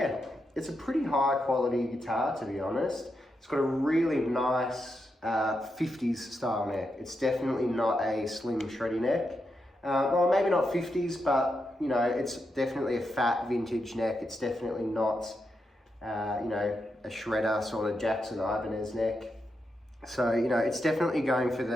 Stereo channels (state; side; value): normal; both; correlation 0.84